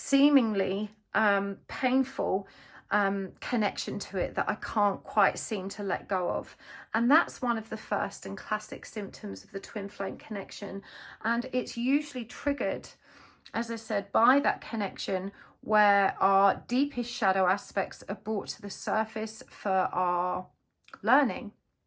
painful connection to it that I can't quite seem to let go of. And that's one of the first and classic symptoms of the twin flame connection. And it's usually triggered, as I said, by that connection where our deepest shadow aspects are brought to the surface for our learning.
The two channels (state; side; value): identical; both; correlation 1.00